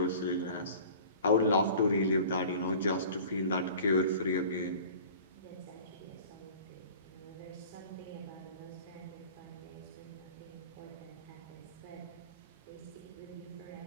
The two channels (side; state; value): both; inverted; correlation -0.43